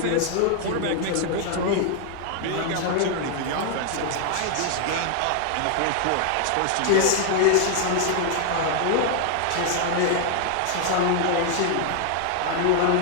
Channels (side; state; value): both; different; correlation 0.00